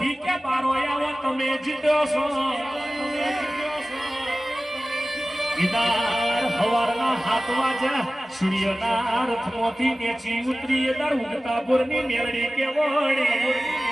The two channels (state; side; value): normal; both; correlation 0.96